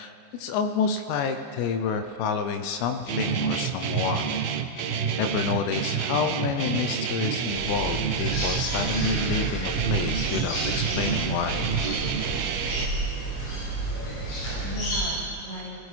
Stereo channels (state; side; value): late; right; 25 ms